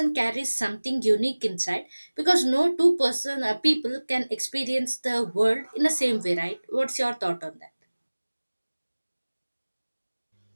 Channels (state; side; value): inverted; both; correlation -1.00